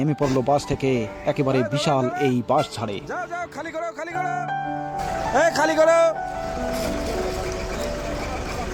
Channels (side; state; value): both; identical; correlation 1.00